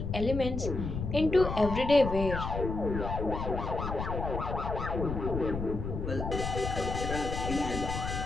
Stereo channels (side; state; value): left; noise; rumble, 4 dB below the sound